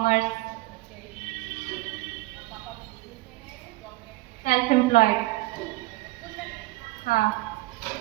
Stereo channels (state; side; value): quieter; left; 19.6 dB